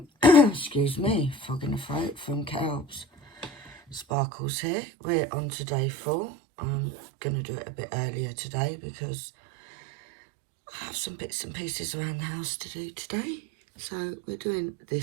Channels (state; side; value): drops out; left; at 4.0 s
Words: excuse me, fog in the throat, from Kelbs. Sparkles here. We're on to day 4. I'm going to do it a bit earlier today because I have some bits and pieces around the house to do today. So we're doing